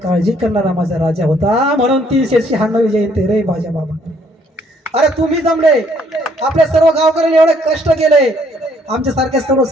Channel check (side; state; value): both; normal; correlation 0.65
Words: करणारा माझा राजा होता. म्हणून 396 जयंती रे माझ्या बाबा. अरे तुम्ही जमले, आपल्या सर्व गावकऱ्यांनी एवढे कष्ट केले, आमच्यासारख्या